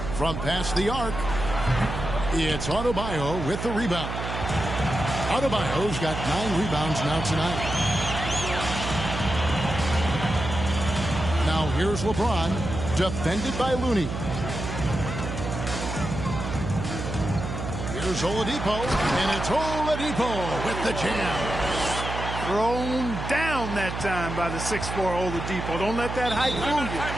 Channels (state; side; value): noise; right; hum, 5 dB below the sound